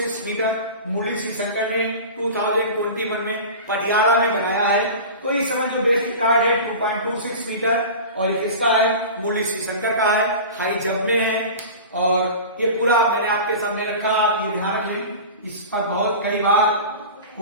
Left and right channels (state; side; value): inverted; both; correlation -0.33